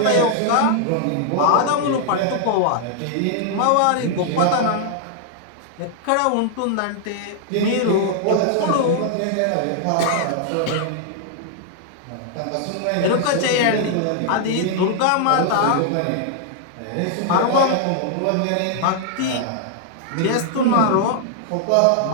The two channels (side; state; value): both; different; correlation -0.01